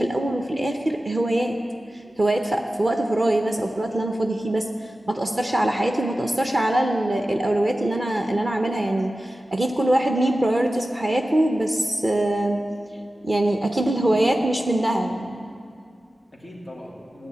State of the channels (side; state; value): both; normal; correlation 0.95